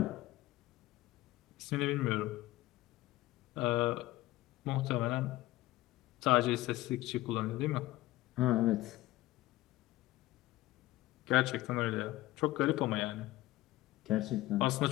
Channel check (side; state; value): right; quieter; 17.3 dB